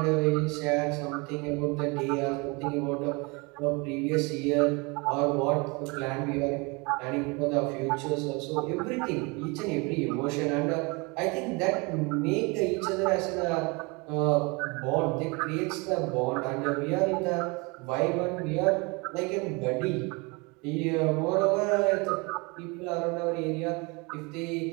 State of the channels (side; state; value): left; quieter; 28.2 dB